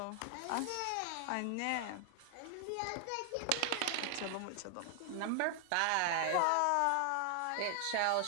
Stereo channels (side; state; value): both; different; correlation 0.00